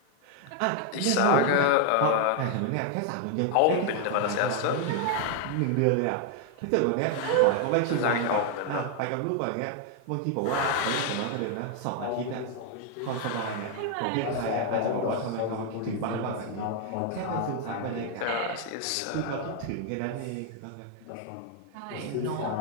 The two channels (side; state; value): both; different; correlation 0.00